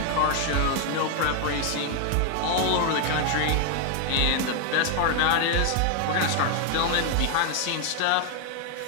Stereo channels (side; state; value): both; different; correlation 0.01